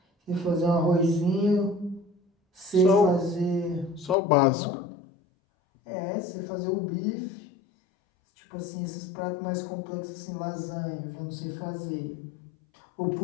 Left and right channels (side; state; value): right; drops out; at 4.2 s